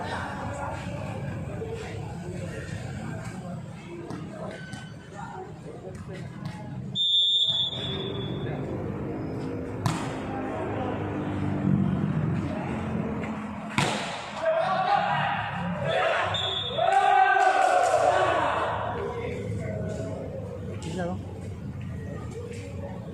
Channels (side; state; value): both; identical; correlation 1.00